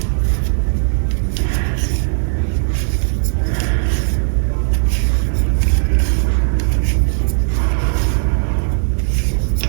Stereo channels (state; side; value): silent; left; digital silence